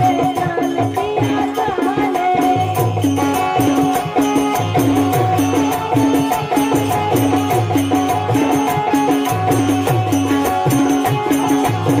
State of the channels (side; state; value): both; identical; correlation 1.00